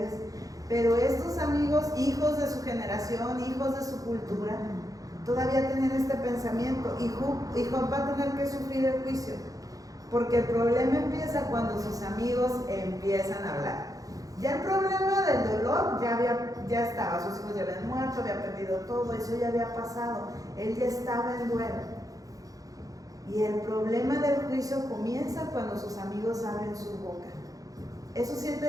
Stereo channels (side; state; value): left; late; 0.17 ms